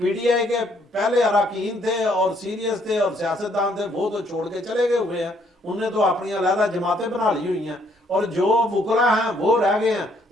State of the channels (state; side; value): normal; both; correlation 0.68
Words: ڈی آئی کے پہلے اراکین تھے اور سیریس تھے اور سیاستدان تھے وہ تو چھوڑ کے چلے گئے ہوئے ہیں، انہوں نے تو اپنی علیحدہ جماعتیں بنا لی ہوئی ہیں، اور جو وکلا ہیں وہ رہ گئے ہیں،